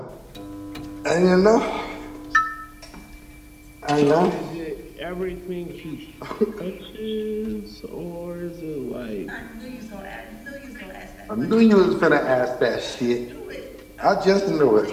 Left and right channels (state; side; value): identical; both; correlation 1.00